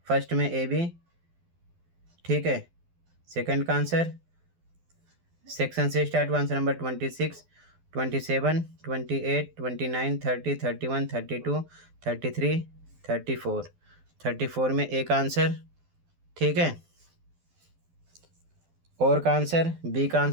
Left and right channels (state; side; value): late; left; 12 ms